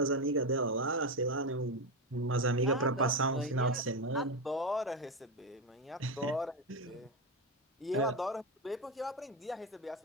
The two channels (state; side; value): normal; both; correlation 0.12